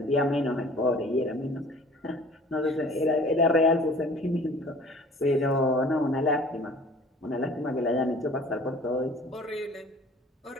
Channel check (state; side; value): normal; both; correlation 0.48